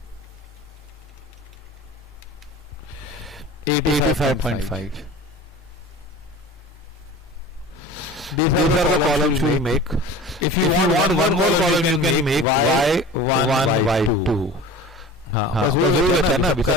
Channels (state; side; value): normal; both; correlation 0.38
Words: 85.5. These are the columns we make. If you want one more column, you can make y1, y2. हाँ, बस वो है ना, सबका